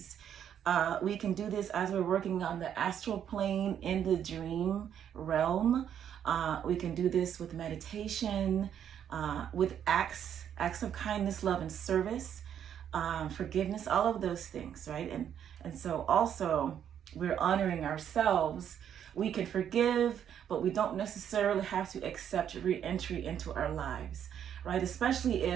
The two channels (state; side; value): quieter; left; 9.2 dB